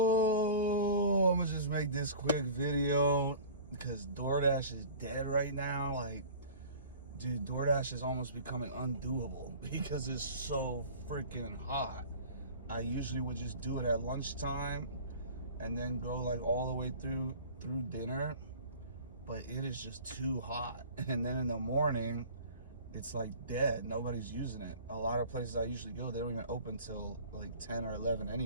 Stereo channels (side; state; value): both; inverted; correlation -0.42